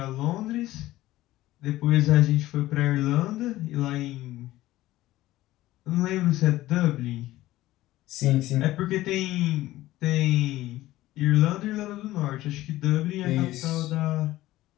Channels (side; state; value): right; quieter; 16.3 dB